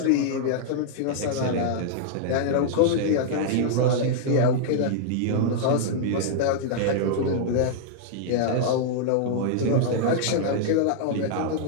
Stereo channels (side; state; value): both; different; correlation -0.01